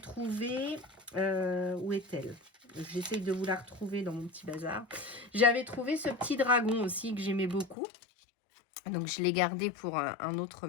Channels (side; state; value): right; drops out; at 7.8 s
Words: où est-elle? J'essaye de vous la retrouver dans mon petit bazar. J'avais trouvé ce petit dragon aussi que j'aimais beaucoup. Donc, je l'ai gardé pour un autre